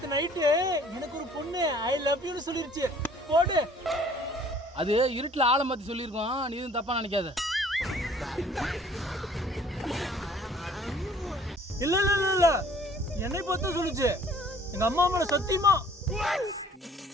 நைட்டு எனக்கு ஒரு பொண்ணு ஐ லவ் யூன்னு சொல்லிருச்சு. போடு. அது இருட்டுல ஆளை மாத்தி சொல்லியிருக்கோம், நீ எதுவும் தப்பா நினைக்காத. இல்ல இல்ல இல்ல இல்ல என்னை பார்த்து சொல்லுச்சு. எங்க அம்மா மேல சத்தியமா.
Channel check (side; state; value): both; normal; correlation 0.55